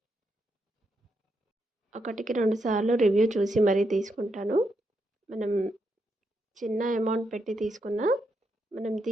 ఒకటికి 2 సార్లు రివ్యూ చూసి మరీ తీసుకుంటాను. మనం చిన్న అమౌంట్ పెట్టి తీసుకున్నా మనం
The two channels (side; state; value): both; normal; correlation 0.81